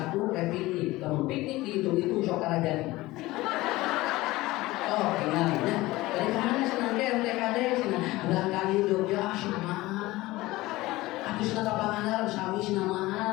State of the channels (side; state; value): right; quieter; 19.0 dB